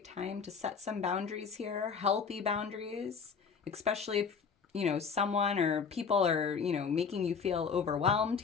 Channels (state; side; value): quieter; right; 5.9 dB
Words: time to set some boundaries here, healthy boundaries, especially if, someone or people are, making you feel overwhelmed